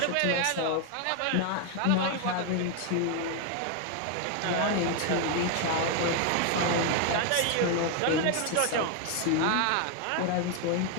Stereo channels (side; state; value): both; different; correlation 0.01